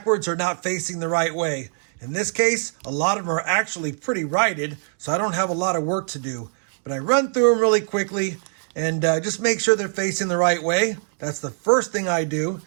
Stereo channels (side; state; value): left; silent; digital silence